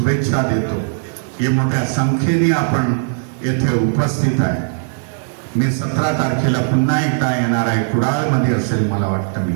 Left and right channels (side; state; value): left; silent; 59 dB below the other